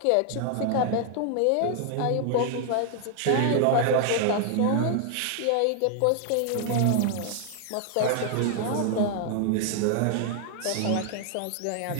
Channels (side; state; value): both; different; correlation 0.00